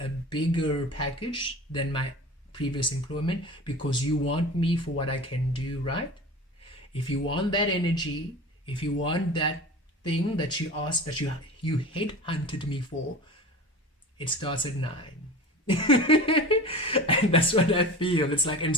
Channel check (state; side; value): normal; both; correlation 0.35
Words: bigger package than my previous employment because you want me for what I can do, right? If you want that energy, if you want that thing that you asked, that you headhunted me for, it starts at 9. And that's what I feel. It's like, and